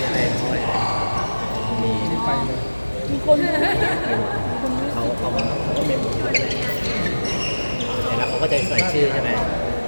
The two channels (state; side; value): inverted; both; correlation -1.00